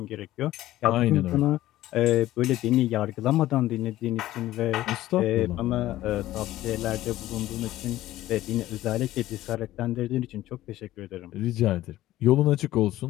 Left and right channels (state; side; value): quieter; right; 15.0 dB